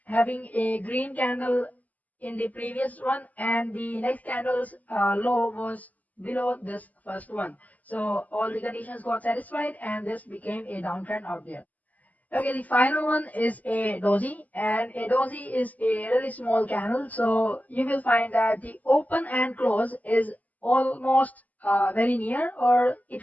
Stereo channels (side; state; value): right; late; 0.077 ms